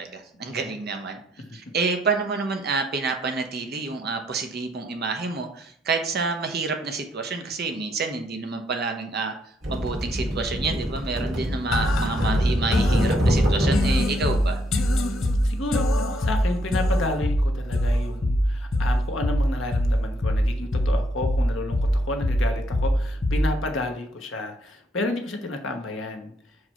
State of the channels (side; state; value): both; normal; correlation 0.73